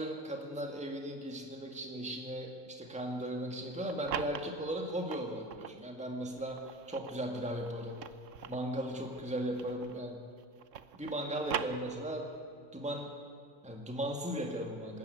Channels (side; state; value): both; normal; correlation 0.37